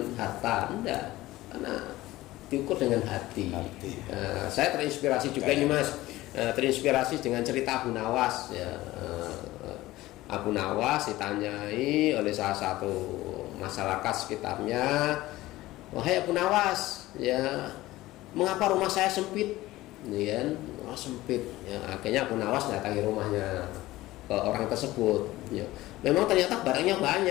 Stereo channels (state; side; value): quieter; right; 17.4 dB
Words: harta, enggak. Karena diukur dengan hati. Saya terinspirasi juga ini Mas, terinspirasi dengan cerita Abu Nawas ya. Abu Nawas ditanyai oleh salah satu masyarakat sekitarnya, wahai Abu Nawas ya, mengapa rumah saya sempit? Ya, rumah sempit ya, akhirnya Abu Nawas datangi rumahnya ke orang tersebut ya. Memang ternyata barangnya